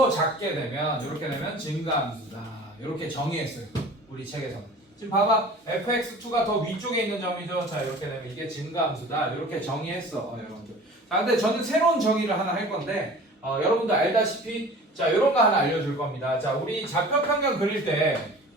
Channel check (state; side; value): normal; both; correlation 0.42